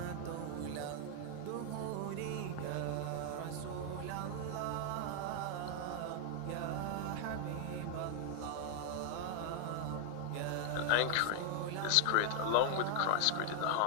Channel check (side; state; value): both; different; correlation 0.00